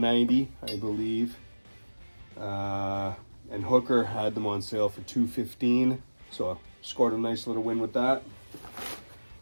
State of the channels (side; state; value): both; inverted; correlation -1.00